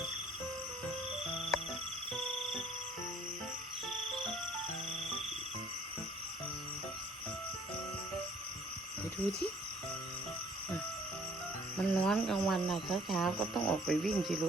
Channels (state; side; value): normal; both; correlation 0.57